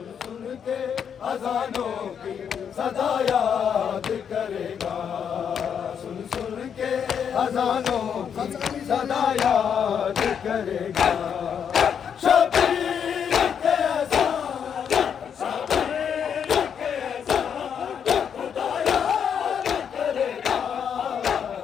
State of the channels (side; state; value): right; quieter; 7.7 dB